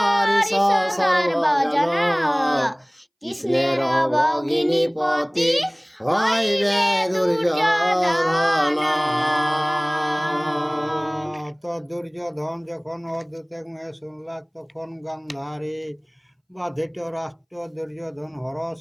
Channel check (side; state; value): both; identical; correlation 1.00